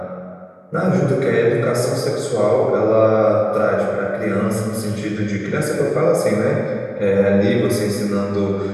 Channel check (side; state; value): both; identical; correlation 1.00